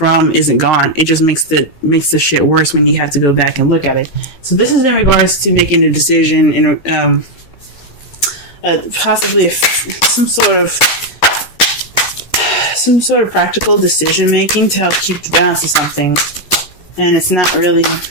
isn't gone. It just makes the shit worse when you have to go back and look at it. So this is in regards to making a decision and possibly some sort of practical decision making to help keep the balance of something, and it's not really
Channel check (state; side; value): late; right; 13 ms